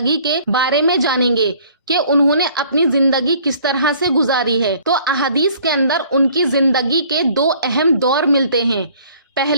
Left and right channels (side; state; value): both; inverted; correlation -0.55